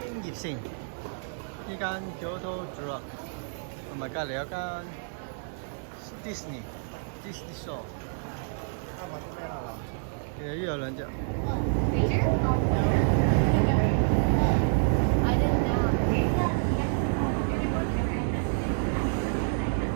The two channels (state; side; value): silent; left; 59 dB below the other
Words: 京葉線呢間 Kyoto Drug 同埋隔離有間 Disney Store， 啱買啲咩啦嗱？其實呢有兩隻。